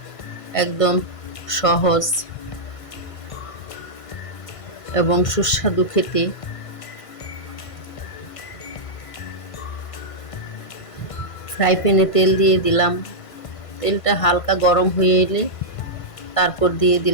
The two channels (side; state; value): right; late; 1.5 ms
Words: একদম সহজ এবং সুস্বাদু খেতে। ফ্রাই প্যানে তেল দিয়ে দিলাম, তেলটা হালকা গরম হয়ে এলে তারপর দিয়ে